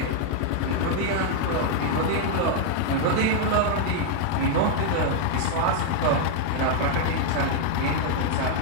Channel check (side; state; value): both; different; correlation 0.00